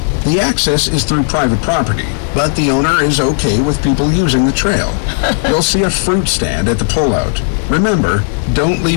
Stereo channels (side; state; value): right; silent; digital silence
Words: The access is through private property, but the owner is okay with people using the trail. You'll see a fruit stand at the pullout. Remember, don't